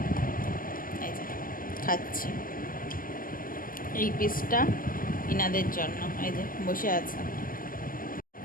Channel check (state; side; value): late; right; 0.41 ms